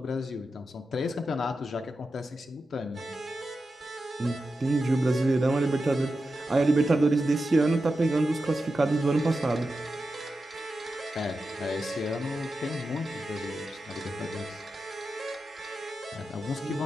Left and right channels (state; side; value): normal; both; correlation 0.91